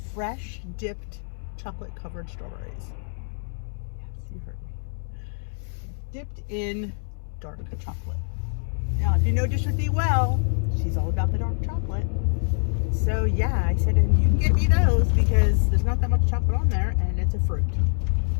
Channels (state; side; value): silent; right; 62 dB below the other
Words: fresh dipped chocolate covered strawberries. Yes, you heard me. Dipped in dark chocolate. Now, if you know Dish with Dee well, she's all about the dark chocolate. So yeah, I said, and you can get me those because there's not that much chocolate on there and it's a fruit.